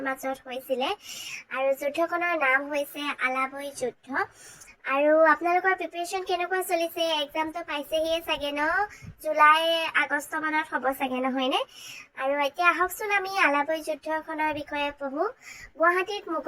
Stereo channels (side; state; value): both; identical; correlation 1.00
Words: মাজত হৈছিলে আৰু যুদ্ধখনৰ নাম হৈছে আলাবৈ যুদ্ধ। আৰু আপোনালোকৰ প্ৰিপাৰেশ্যন কেনেকুৱা চলিছে? এক্সামটো পাইছেহিয়ে চাগে ন? জুলাই আগষ্ট মানত হ'ব চাগে, নহয়নে? আৰু এতিয়া আহকচোন আমি আলাবৈ যুদ্ধখনৰ বিষয়ে পঢ়োঁ। গুৱাহাটীত